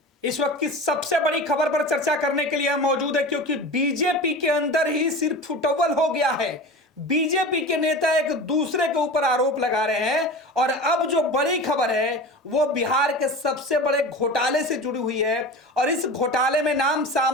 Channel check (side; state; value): both; normal; correlation 0.32